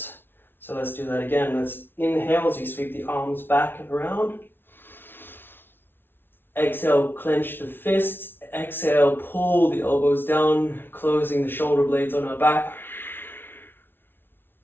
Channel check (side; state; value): right; late; 0.10 ms